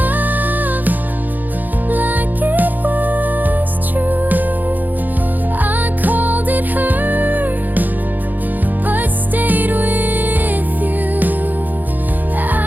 like it was true. I called it hurt, but stayed with you.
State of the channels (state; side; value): late; left; 0.085 ms